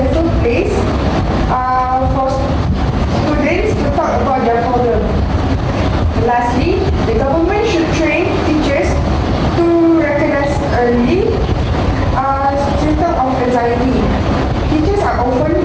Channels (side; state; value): both; identical; correlation 1.00